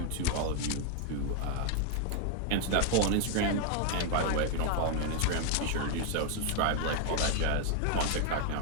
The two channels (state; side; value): different; both; correlation 0.00